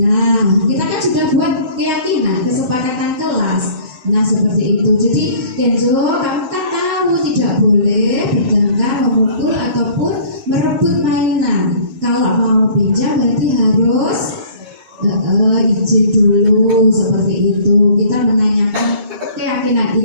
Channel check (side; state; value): left; late; 6.5 ms